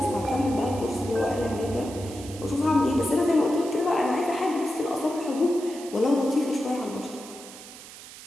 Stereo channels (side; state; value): right; noise; hiss, 16 dB below the sound